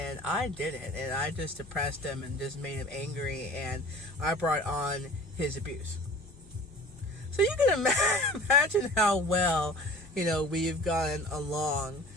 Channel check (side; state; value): both; normal; correlation 0.43